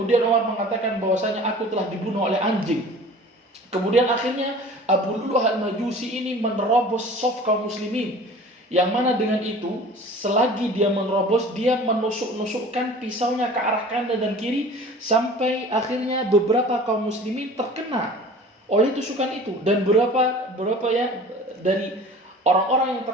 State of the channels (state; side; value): normal; both; correlation 0.43